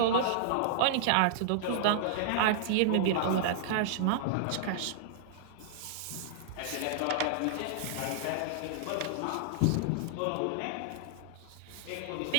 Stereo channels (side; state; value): both; different; correlation -0.01